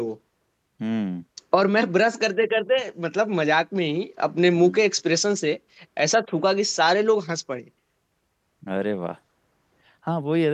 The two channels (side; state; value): both; identical; correlation 1.00